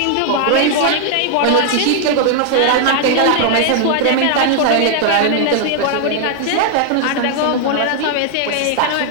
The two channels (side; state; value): both; different; correlation 0.00